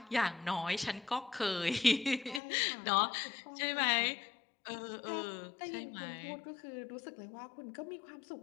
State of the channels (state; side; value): drops out; right; at 2.4 s